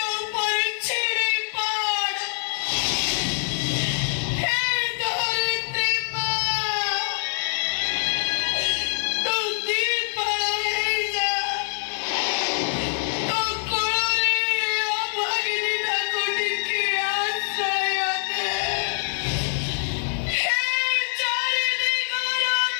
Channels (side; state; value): right; silent; 62 dB below the other